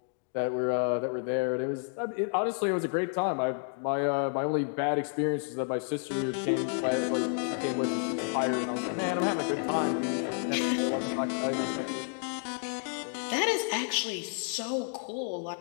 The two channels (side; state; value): right; silent; 57 dB below the other